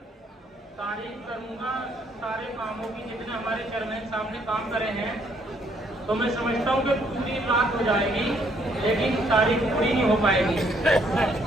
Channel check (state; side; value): normal; both; correlation 0.68